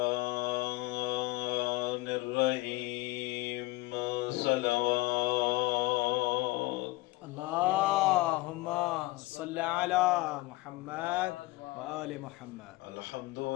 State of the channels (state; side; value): quieter; right; 20.3 dB